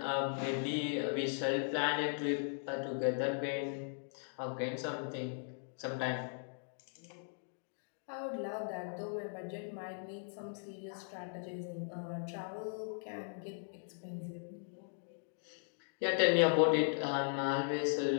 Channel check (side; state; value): right; silent; digital silence